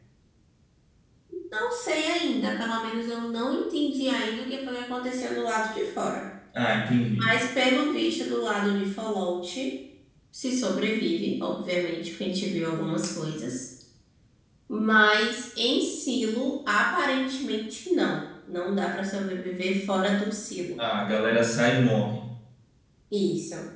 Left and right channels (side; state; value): both; identical; correlation 1.00